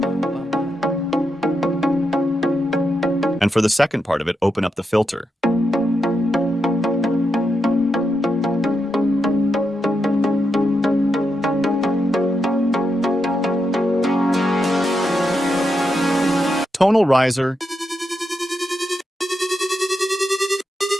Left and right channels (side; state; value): both; normal; correlation 0.85